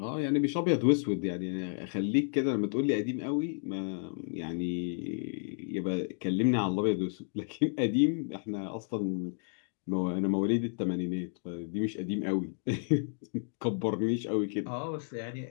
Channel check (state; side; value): silent; right; digital silence